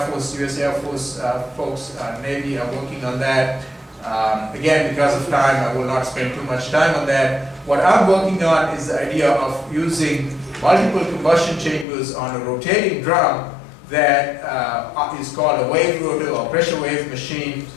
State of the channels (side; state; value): right; drops out; at 11.9 s